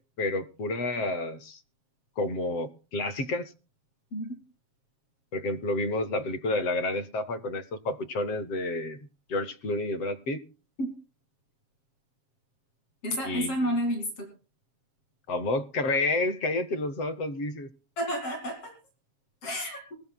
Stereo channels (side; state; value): right; late; 7.4 ms